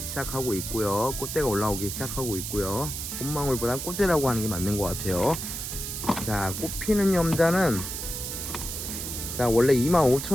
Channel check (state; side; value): noise; right; hiss, 6 dB below the sound